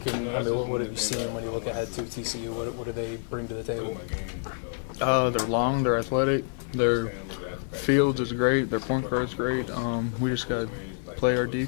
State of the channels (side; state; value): right; silent; 60 dB below the other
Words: – what have you seen when you look ahead to TCU? What do they bring to the table? They're long, they're athletic, their fields is great, their point guard is great. We just got to play our